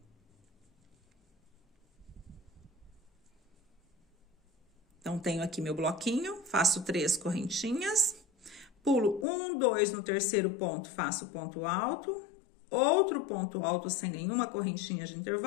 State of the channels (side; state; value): right; drops out; at 9.2 s